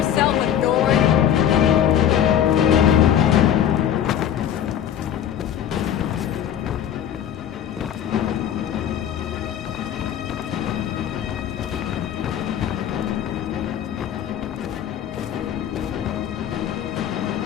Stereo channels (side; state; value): right; quieter; 9.9 dB